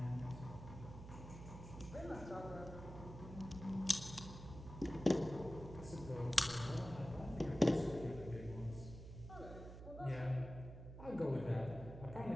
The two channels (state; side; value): noise; right; hum, 11 dB below the sound